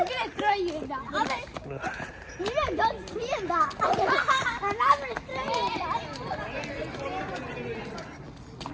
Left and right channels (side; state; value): both; identical; correlation 1.00